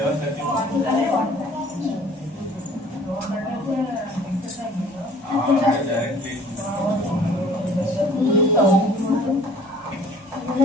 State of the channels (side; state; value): both; normal; correlation 0.52